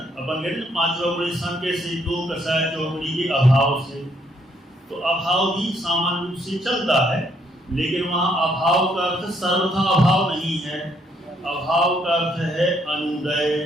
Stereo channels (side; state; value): both; normal; correlation 0.70